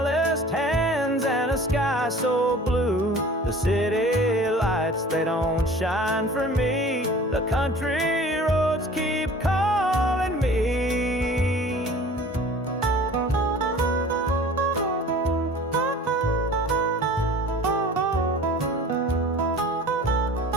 hands and a sky so blue. The city lights, they don't shine for me. The country roads keep calling me.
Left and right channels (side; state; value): both; normal; correlation 0.44